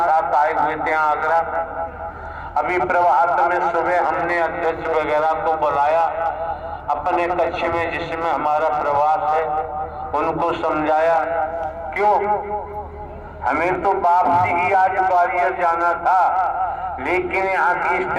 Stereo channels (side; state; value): both; identical; correlation 1.00